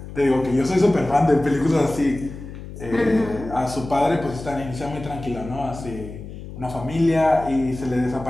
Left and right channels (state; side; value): noise; left; hum, 12 dB below the sound